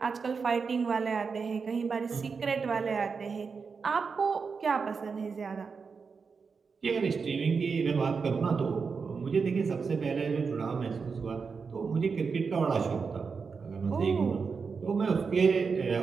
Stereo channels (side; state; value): left; quieter; 5.3 dB